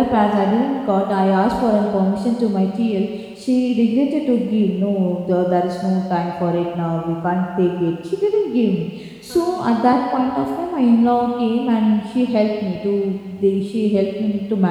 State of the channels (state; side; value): identical; both; correlation 1.00